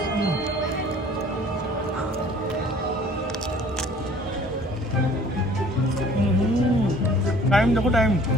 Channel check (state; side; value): normal; both; correlation 0.52